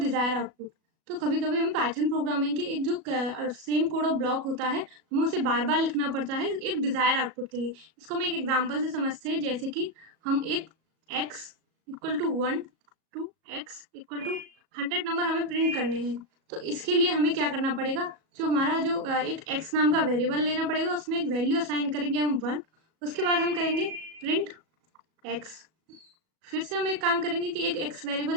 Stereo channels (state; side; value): late; left; 37 ms